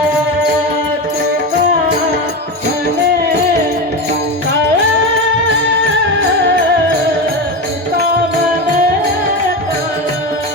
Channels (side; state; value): both; normal; correlation 0.20